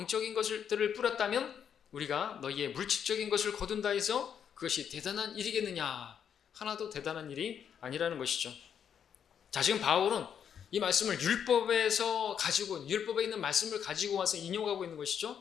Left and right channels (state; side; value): quieter; right; 8.2 dB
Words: 것들을 뿌렸다면 우리가 너희의 물질적인 것을 거둔다 해서 그것이 대단한 일이겠느냐? 하나도 대단한 일이 아니라는 것이죠. 자, 지금 바울은 이 말씀을 율법에 있는 말씀을 가지고 와서 인용하고 있는